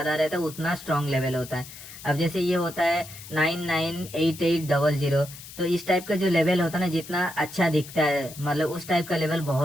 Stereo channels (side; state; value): left; noise; hiss, 15 dB below the sound